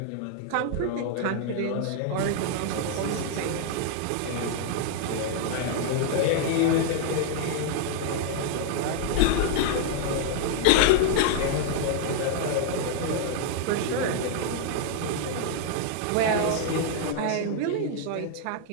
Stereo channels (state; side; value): different; both; correlation 0.00